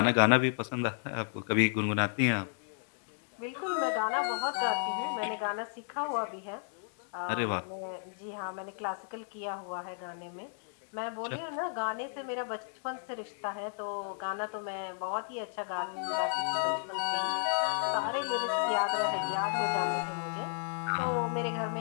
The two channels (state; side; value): silent; right; digital silence